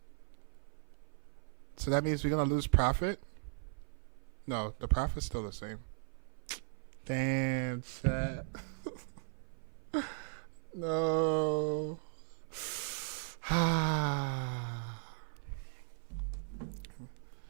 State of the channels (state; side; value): silent; left; 53 dB below the other